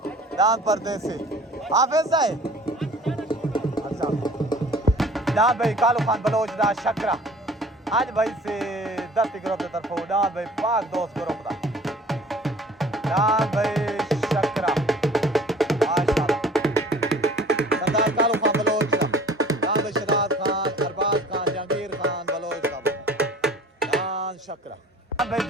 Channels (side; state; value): both; normal; correlation 0.48